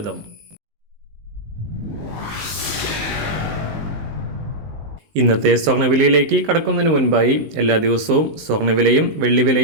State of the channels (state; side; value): late; left; 19 ms